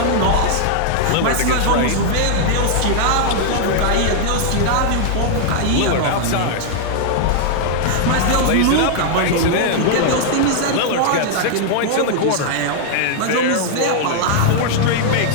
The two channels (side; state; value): both; different; correlation -0.01